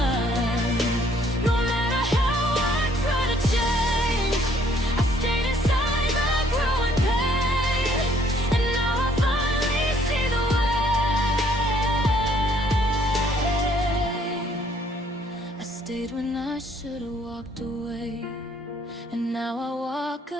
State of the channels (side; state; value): both; normal; correlation 0.63